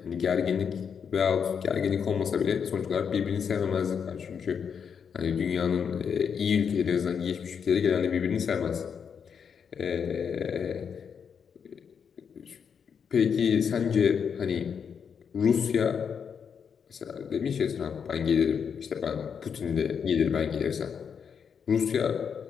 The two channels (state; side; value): quieter; right; 6.9 dB